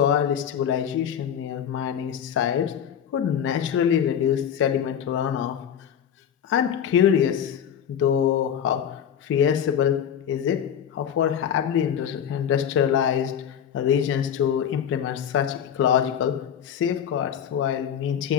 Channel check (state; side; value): quieter; right; 8.8 dB